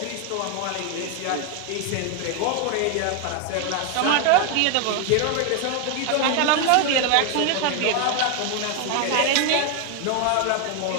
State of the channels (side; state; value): both; different; correlation 0.01